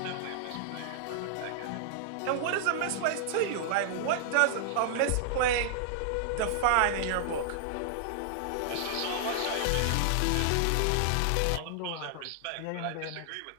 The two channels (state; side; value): different; both; correlation -0.01